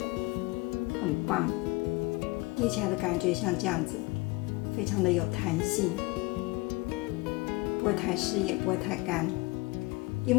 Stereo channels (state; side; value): quieter; right; 23.6 dB